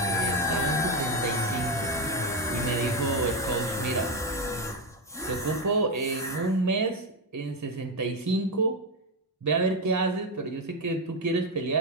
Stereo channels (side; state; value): both; normal; correlation 0.09